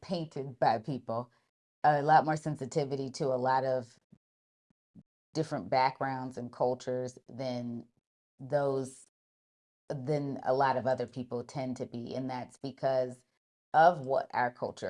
painted by people, a lot more sensitivity to a lot of different backgrounds and cultures those than a lot of other people tend to be, and that's because of what our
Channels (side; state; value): both; identical; correlation 1.00